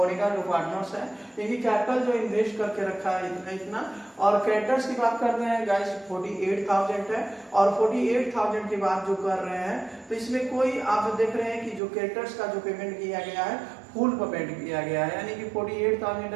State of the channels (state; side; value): drops out; left; at 11.8 s